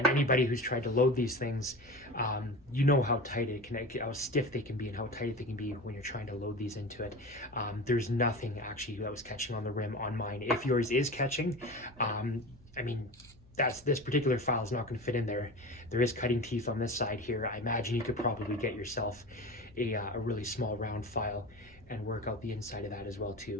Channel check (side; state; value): left; noise; hum, 26 dB below the sound